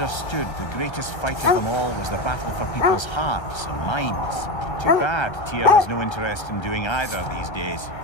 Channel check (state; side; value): late; right; 1.3 ms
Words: the greatest fight of them all was the battle for people's hearts and minds. Too bad Tyr has no interest in doing either these days.